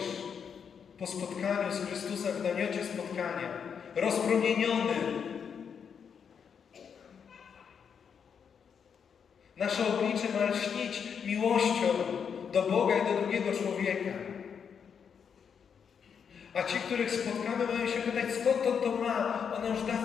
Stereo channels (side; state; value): right; quieter; 7.0 dB